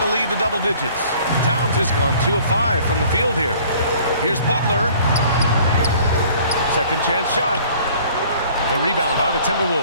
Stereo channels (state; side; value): inverted; both; correlation -0.53